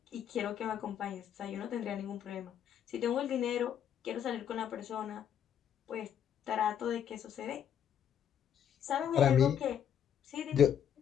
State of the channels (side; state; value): right; quieter; 9.1 dB